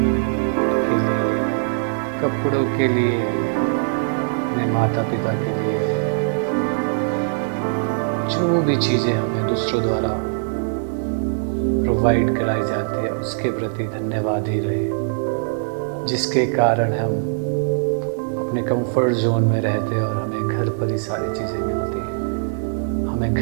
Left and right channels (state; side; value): silent; left; digital silence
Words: के लिए, कपड़ों के लिए, अपने माता पिता के लिए, जो भी चीज़ें हमें दूसरों द्वारा प्रोवाइड कराई जाती है, उसके प्रति धन्यवाद ही रहे, जिसके कारण हम अपने कंफर्ट जोन में रहते हैं और हमें घर पर ही सारी चीज़ें मिलती हैं। हमें